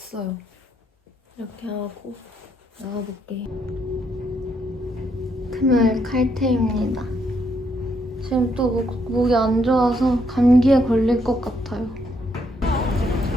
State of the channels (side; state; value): both; normal; correlation 0.74